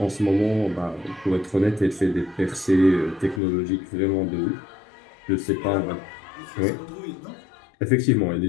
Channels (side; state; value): right; drops out; at 3.4 s